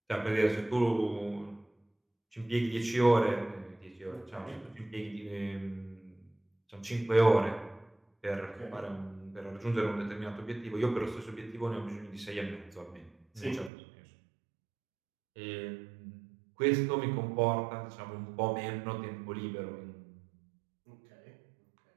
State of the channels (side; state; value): left; drops out; at 13.7 s